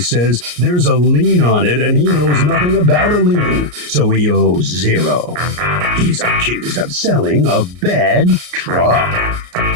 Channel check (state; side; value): late; left; 34 ms